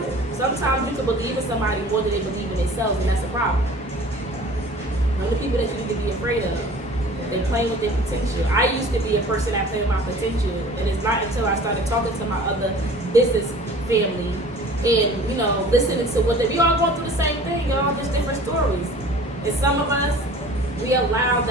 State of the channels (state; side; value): normal; both; correlation 0.45